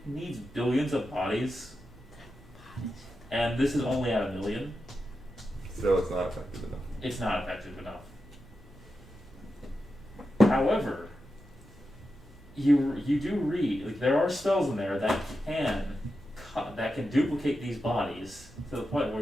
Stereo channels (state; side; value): normal; both; correlation 0.89